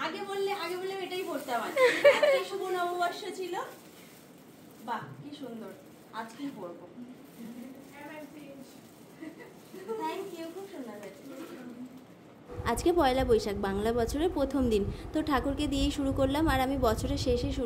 আগে বললে এটাই পড়তাম। আজকে শুভ নববর্ষ ছিল। বাহ কি সুন্দর, আজকেই পড়বো। থ্যাংক ইউ, খুব সুন্দর হয়েছে। আজকে পয়লা বৈশাখ, বাংলা বছরের প্রথম দিন। তো ঠাকুরকে দিয়েই শুরু করলাম, আর আমি বছরের শেষে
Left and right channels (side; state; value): both; identical; correlation 1.00